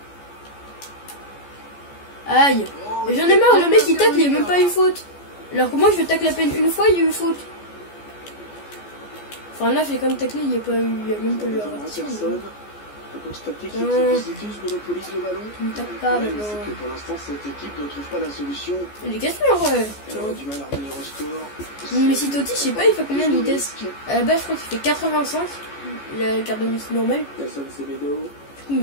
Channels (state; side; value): late; right; 14 ms